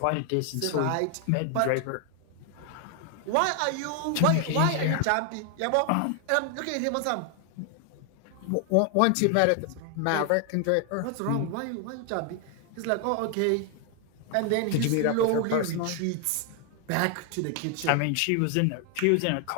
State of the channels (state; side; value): different; both; correlation 0.00